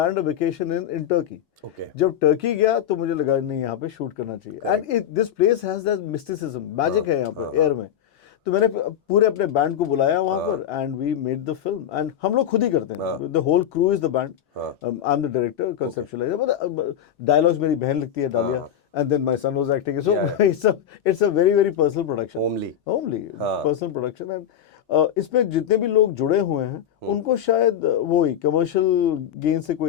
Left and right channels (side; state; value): right; quieter; 9.7 dB